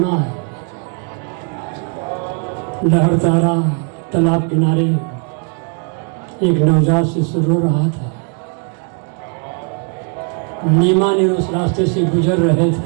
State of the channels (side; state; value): left; quieter; 40.0 dB